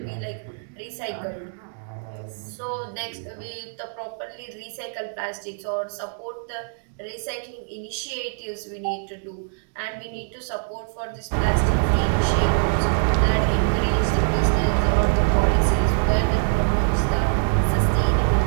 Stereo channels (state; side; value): silent; left; digital silence